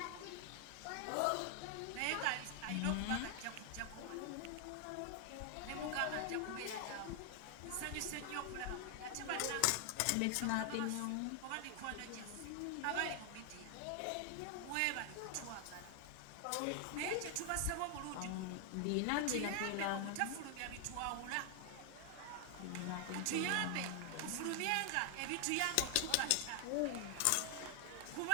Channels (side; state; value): both; different; correlation 0.00